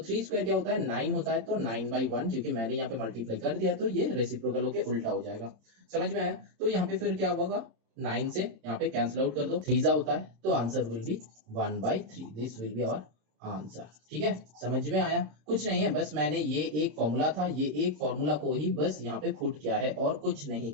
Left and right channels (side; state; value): left; late; 26 ms